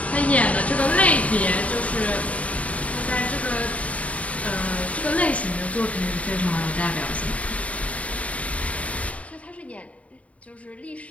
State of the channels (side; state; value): right; late; 0.067 ms